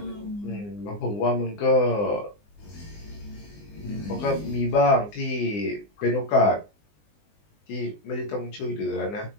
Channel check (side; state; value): right; late; 20 ms